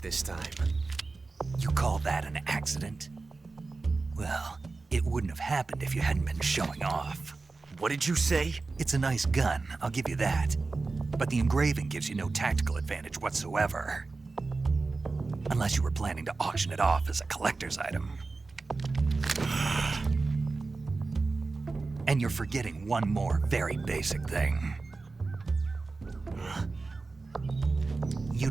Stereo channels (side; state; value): left; quieter; 3.8 dB